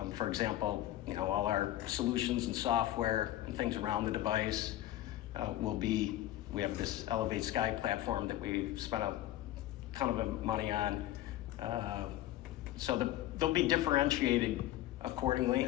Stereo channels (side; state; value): right; quieter; 14.4 dB